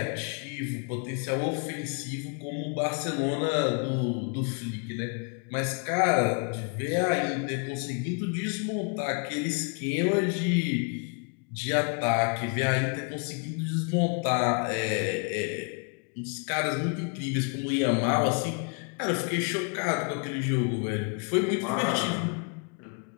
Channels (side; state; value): right; quieter; 37.6 dB